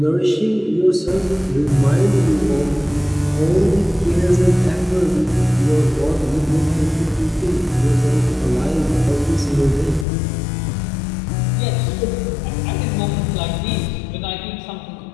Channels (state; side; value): drops out; right; at 10.1 s